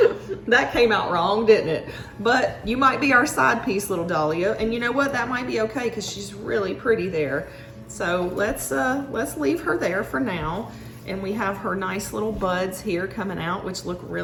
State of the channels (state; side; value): identical; both; correlation 1.00